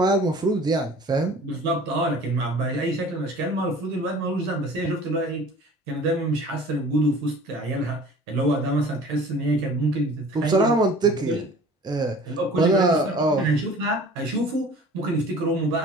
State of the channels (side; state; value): both; normal; correlation 0.46